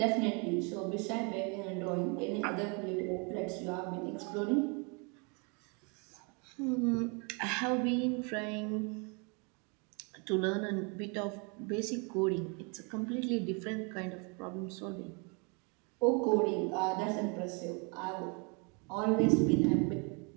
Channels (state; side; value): quieter; left; 33.5 dB